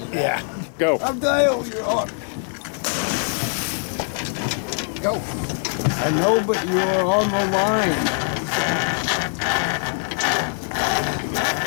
that. Yeah. Go. I'm Dale, you're on. Go. I know, but you're on the line.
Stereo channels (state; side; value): silent; right; 56 dB below the other